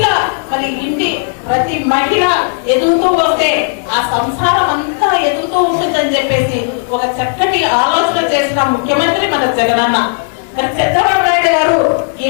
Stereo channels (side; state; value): right; silent; digital silence